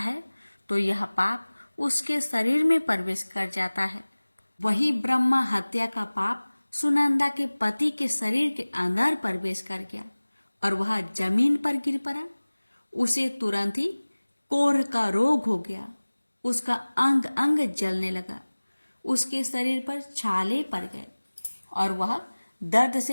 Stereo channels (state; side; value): inverted; both; correlation -1.00